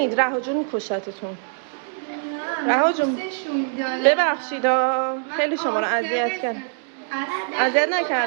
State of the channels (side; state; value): left; silent; 63 dB below the other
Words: رها جون میکشتتون. رها جون ببخشید خیلی شما رو اذیت کردم. اذیت